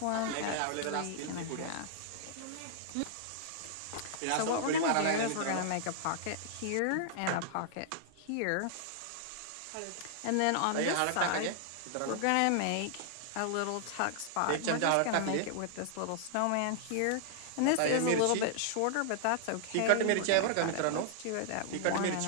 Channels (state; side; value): different; both; correlation -0.01